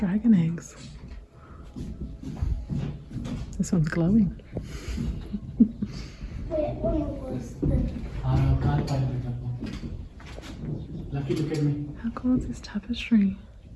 eggs. This one's glowing. Lucky, look at me. How cool is this tapestry?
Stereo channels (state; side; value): identical; both; correlation 1.00